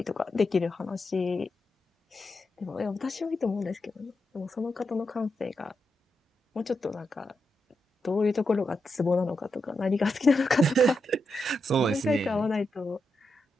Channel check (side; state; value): both; normal; correlation 0.86